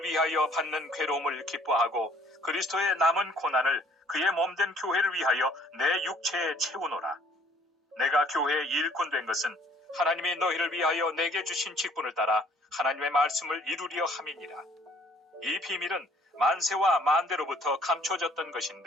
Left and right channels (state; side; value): normal; both; correlation 0.58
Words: 위하여 받는 괴로움을 기뻐하고 그리스도의 남은 고난을 그의 몸된 교회를 위하여 내 육체에 채우노라. 내가 교회의 일꾼 된 것은 하나님이 너희를 위하여 내게 주신 직분을 따라 하나님의 말씀을 이루려 함이니라. 이 비밀은 만세와 만대로부터 감춰졌던